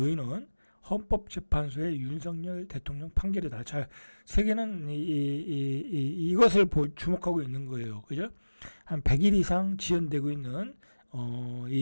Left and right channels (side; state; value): both; inverted; correlation -1.00